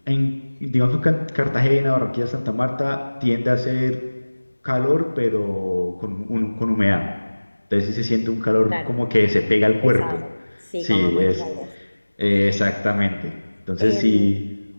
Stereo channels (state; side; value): inverted; both; correlation -1.00